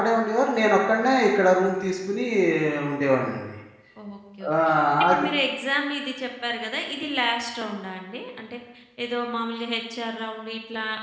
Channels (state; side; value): identical; both; correlation 1.00